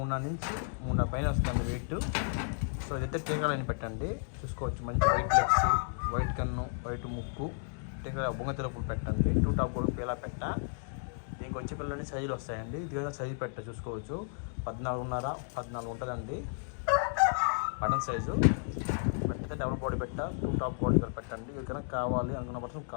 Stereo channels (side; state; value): right; silent; digital silence